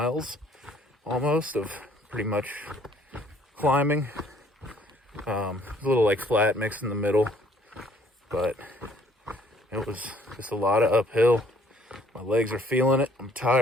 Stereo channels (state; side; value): normal; both; correlation 0.61